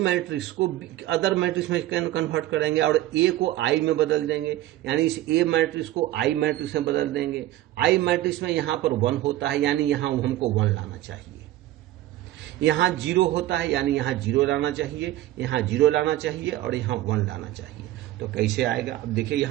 को अदर मैट्रिक्स में कन्वर्ट करेंगे और ए को आई में बदल देंगे, यानी इस ए मैट्रिक्स को आई मैट्रिक्स में बदल देंगे। आई मैट्रिक्स में यहां पर 1 होता है, यानी यहां हमको 1 लाना चाहिए। यहां 0 होता है, यानी यहां 0 लाना चाहिए, यहां 0 लाना चाहिए और यहां 1 लाना चाहिए। तो कैसे आएगा, अब देखिए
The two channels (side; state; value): left; quieter; 15.1 dB